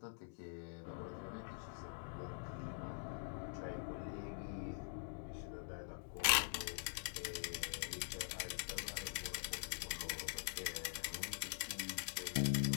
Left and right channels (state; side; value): silent; right; digital silence